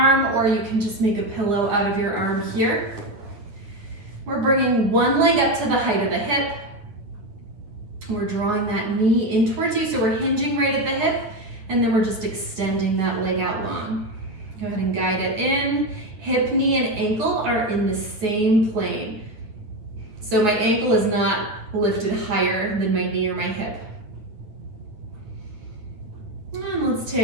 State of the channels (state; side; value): late; left; 9.3 ms